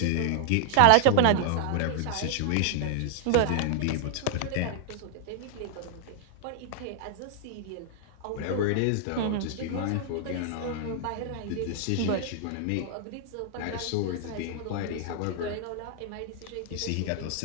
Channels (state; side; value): different; both; correlation 0.00